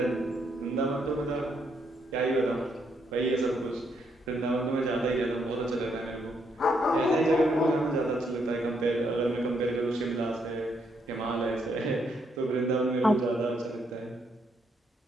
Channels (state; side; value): normal; both; correlation 0.75